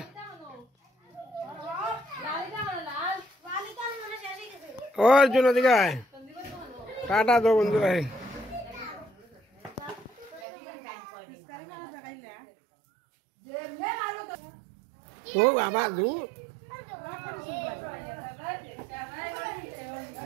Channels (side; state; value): left; drops out; at 10.5 s